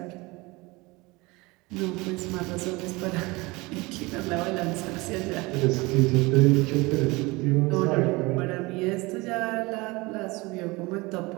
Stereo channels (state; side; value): quieter; left; 23.6 dB